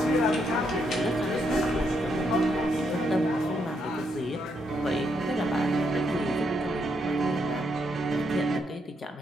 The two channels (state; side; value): normal; both; correlation 0.77